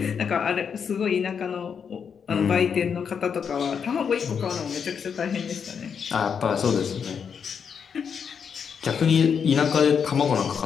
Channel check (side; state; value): right; quieter; 6.9 dB